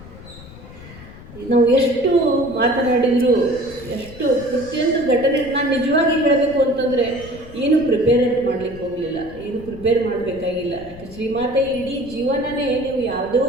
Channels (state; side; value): noise; left; rumble, 17 dB below the sound